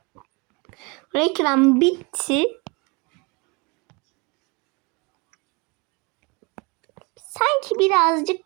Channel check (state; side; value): quieter; left; 29.0 dB